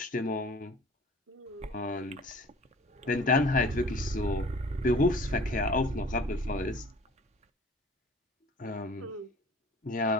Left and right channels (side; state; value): both; normal; correlation 0.47